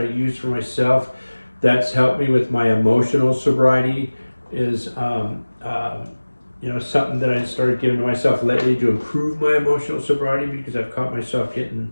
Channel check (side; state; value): both; inverted; correlation -1.00